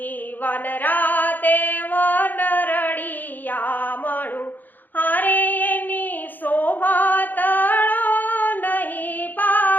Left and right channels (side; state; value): right; late; 0.087 ms